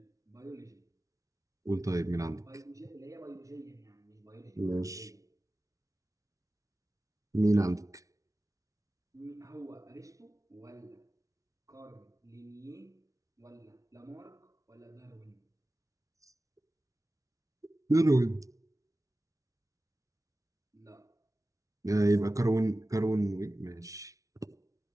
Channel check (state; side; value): late; left; 0.16 ms